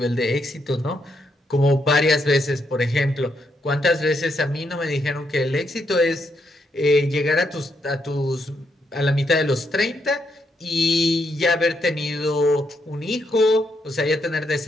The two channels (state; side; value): normal; both; correlation 0.78